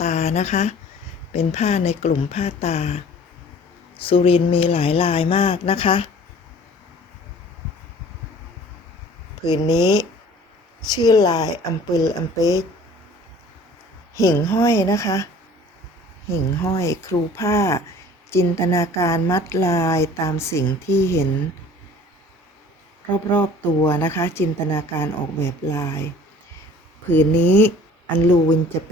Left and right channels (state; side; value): normal; both; correlation 0.49